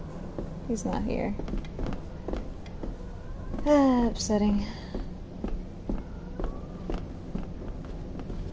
He's not here. Upsetting.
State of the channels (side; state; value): both; identical; correlation 1.00